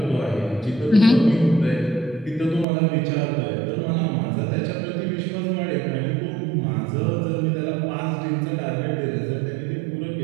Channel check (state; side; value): drops out; left; at 2.7 s